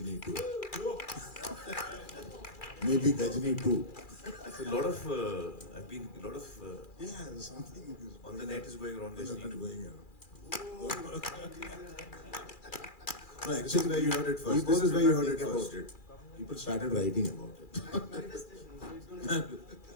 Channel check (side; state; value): right; late; 2.4 ms